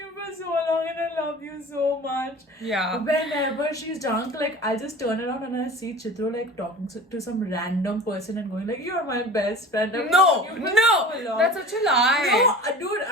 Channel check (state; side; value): normal; both; correlation 0.39